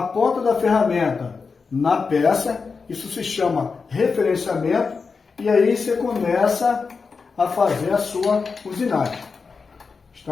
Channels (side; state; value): right; quieter; 4.9 dB